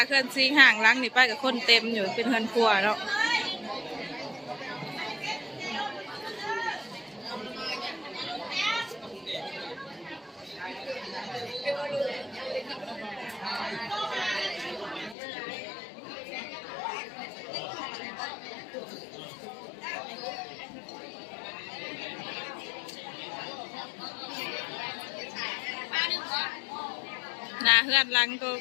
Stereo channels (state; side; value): drops out; right; at 15.2 s